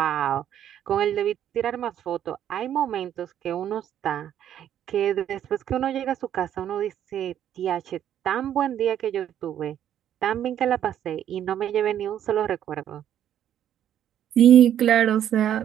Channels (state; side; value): quieter; left; 10.4 dB